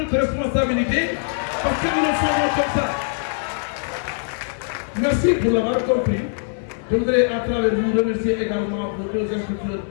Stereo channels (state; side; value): silent; right; digital silence